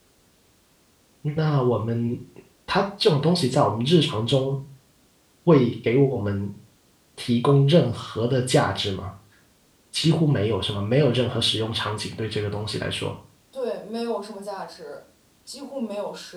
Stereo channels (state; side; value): identical; both; correlation 1.00